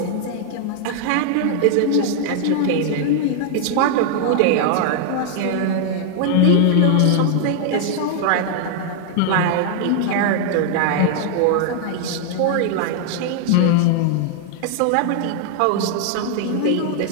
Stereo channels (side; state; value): both; different; correlation 0.00